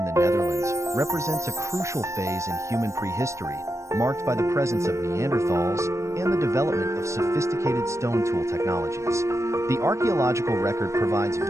the Netherlands represents a crucial phase in human prehistory, marked by the presence of Neanderthals and the development of sophisticated stone tool technologies. The archaeological record provides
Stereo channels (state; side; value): late; left; 0.14 ms